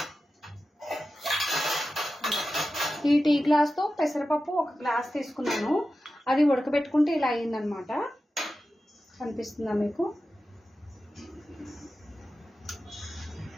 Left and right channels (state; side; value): normal; both; correlation 0.93